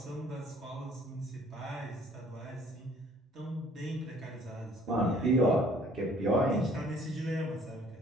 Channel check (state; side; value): normal; both; correlation 0.57